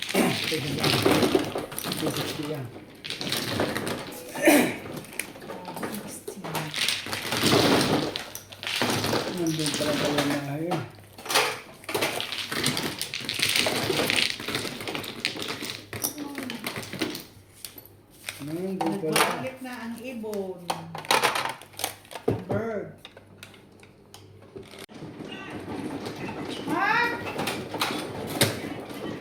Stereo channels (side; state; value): both; identical; correlation 1.00